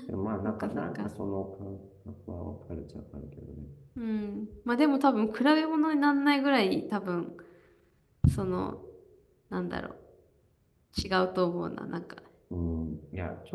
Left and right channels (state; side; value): identical; both; correlation 1.00